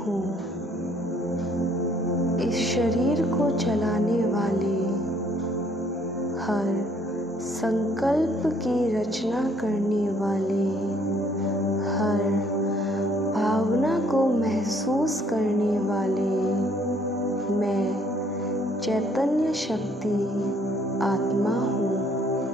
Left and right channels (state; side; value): normal; both; correlation 0.63